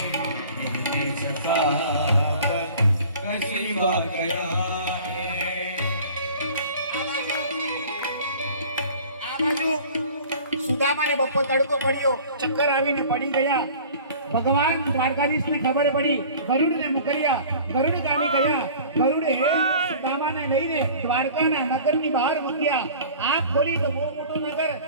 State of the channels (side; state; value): both; inverted; correlation -0.45